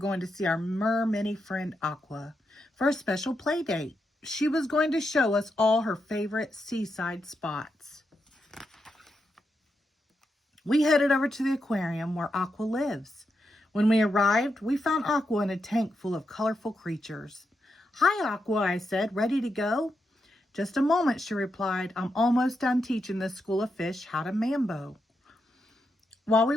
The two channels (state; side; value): normal; both; correlation 0.85